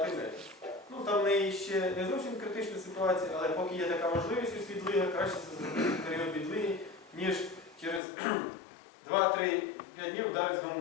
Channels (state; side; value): drops out; right; at 8.0 s